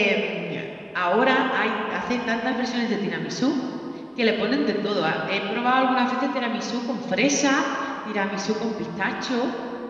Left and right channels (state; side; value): identical; both; correlation 1.00